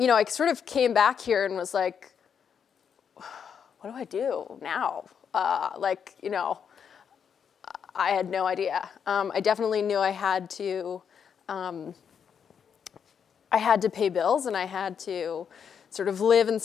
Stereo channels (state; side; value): quieter; right; 7.3 dB